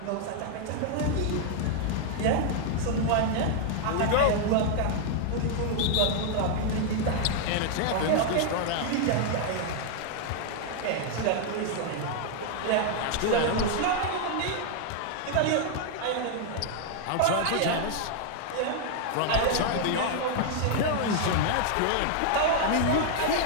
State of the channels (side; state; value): both; different; correlation 0.00